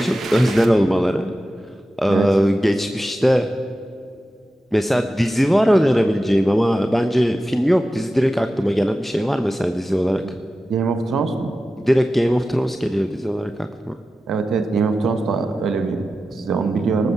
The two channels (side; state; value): both; normal; correlation 0.93